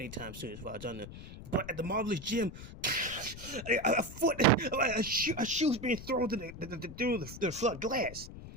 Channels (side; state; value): left; noise; rumble, 12 dB below the sound